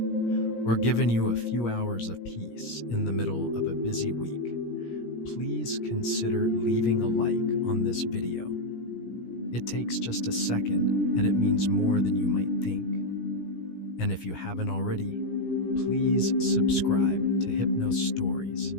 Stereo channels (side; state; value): right; late; 17 ms